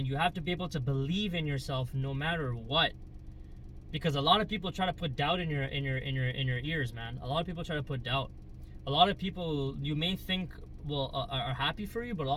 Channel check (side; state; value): both; identical; correlation 1.00